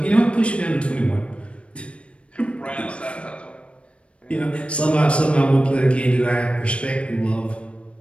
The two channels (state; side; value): late; right; 0.060 ms